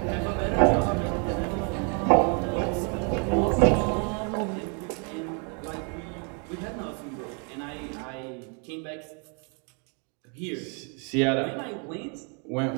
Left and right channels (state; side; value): quieter; left; 37.6 dB